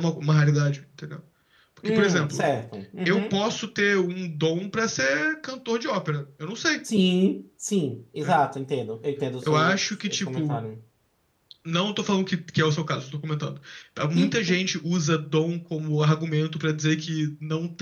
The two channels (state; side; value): identical; both; correlation 1.00